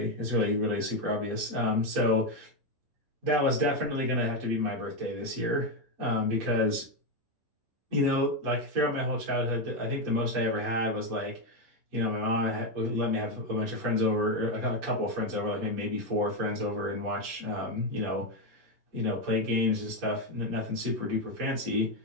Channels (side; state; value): left; late; 11 ms